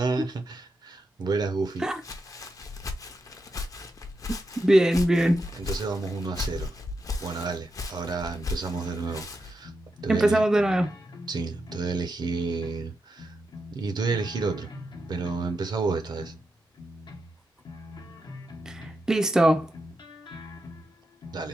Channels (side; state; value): both; normal; correlation 0.86